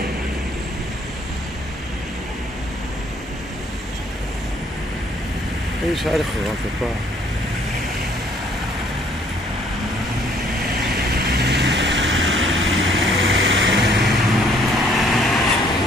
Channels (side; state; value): both; normal; correlation 0.62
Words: این شهر خوران تپا